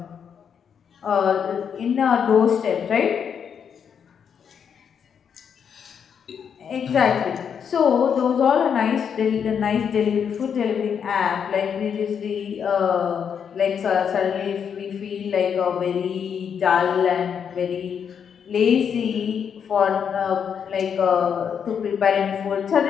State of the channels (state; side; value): quieter; right; 7.4 dB